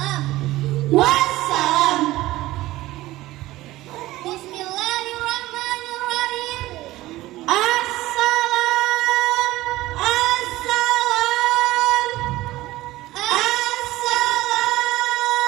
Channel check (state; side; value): quieter; left; 17.2 dB